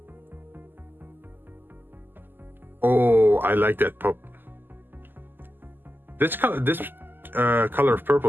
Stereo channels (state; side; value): late; left; 0.092 ms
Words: Oh, I like that pop. This color of